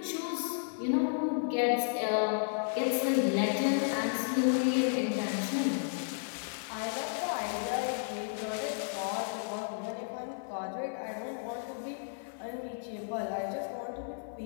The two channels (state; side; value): silent; right; 56 dB below the other